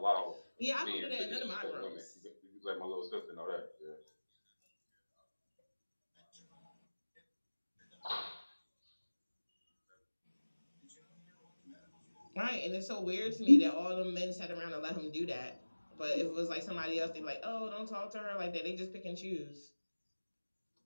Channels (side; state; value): both; inverted; correlation -1.00